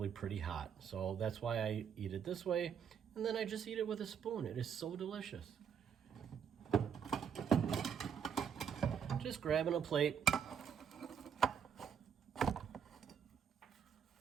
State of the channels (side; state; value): left; quieter; 7.6 dB